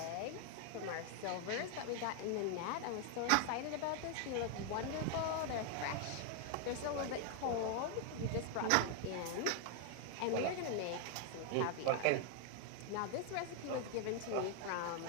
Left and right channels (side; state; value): both; different; correlation 0.00